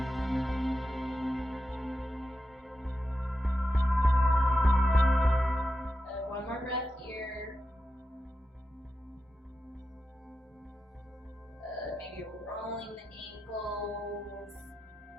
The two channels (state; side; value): normal; both; correlation 0.89